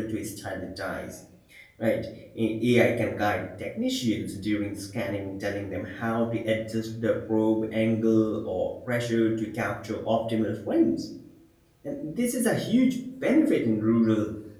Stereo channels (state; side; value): identical; both; correlation 1.00